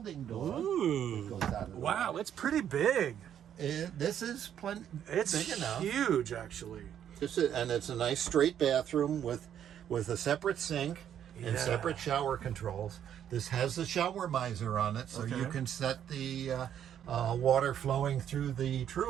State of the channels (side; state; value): left; quieter; 9.7 dB